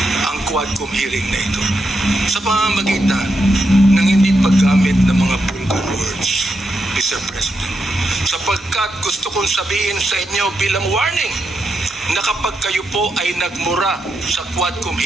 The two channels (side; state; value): both; normal; correlation 0.84